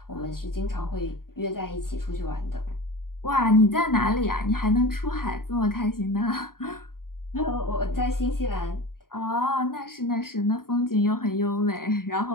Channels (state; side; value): late; right; 0.92 ms